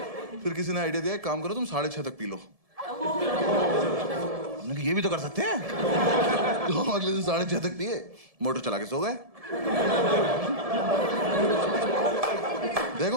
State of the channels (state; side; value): late; left; 1.7 ms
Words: फिर किसी ने आइडिया दिया एक काम करो तुम 6:30 तक पी लो। हमने कहा ये भी तो कर सकते हैं। तो हम अगले दिन 6:30 तक पिए, मोटर चला के सो गए।